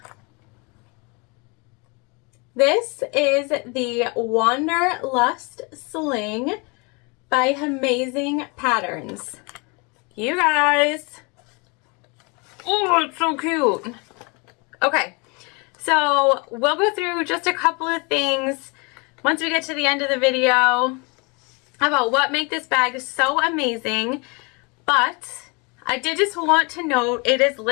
This is the Wanderlust Sling by Hemazing Patterns. You guys. Oh, it's so cute. Okay, so we'll go through just a couple of things once we get to the end of the video about what make this bag so amazing. But I did just want to note it is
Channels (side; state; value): right; quieter; 30.4 dB